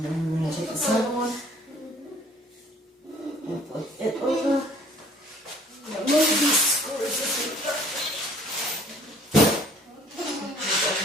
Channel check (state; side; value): normal; both; correlation 0.56